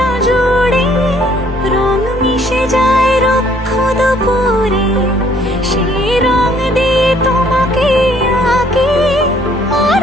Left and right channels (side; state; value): both; normal; correlation 0.62